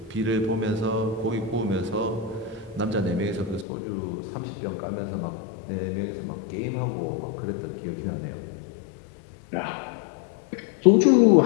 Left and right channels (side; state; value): right; drops out; at 3.7 s